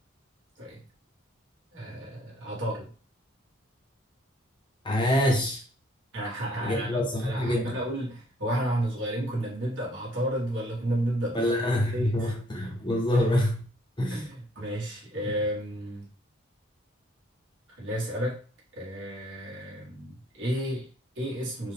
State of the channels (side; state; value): both; normal; correlation 0.64